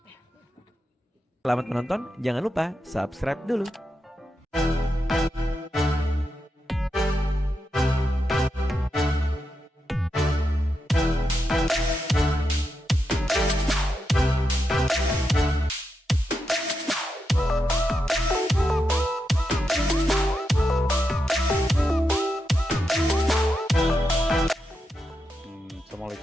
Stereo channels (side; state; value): both; normal; correlation 0.85